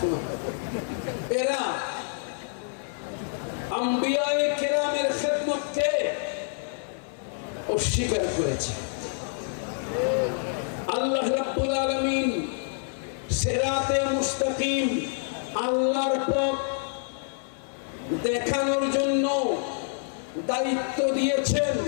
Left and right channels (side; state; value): right; silent; 55 dB below the other